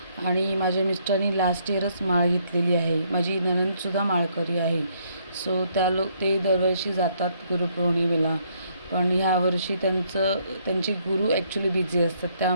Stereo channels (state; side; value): inverted; both; correlation -0.70